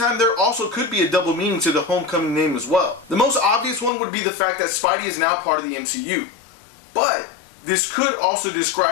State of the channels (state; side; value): drops out; right; at 3.9 s